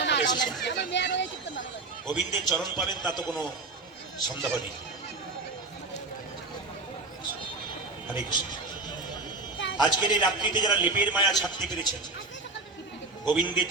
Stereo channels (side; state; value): left; quieter; 3.5 dB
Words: আপনারা এসেছেন, গোবিন্দের চরণ পাবেন তা তো কোনো সন্দেহ নেই। হরে কৃষ্ণ। আজকের এই রাত্রিতে যারা লেপের মায়া ছাড়তে পেরেছেন গোবিন্দের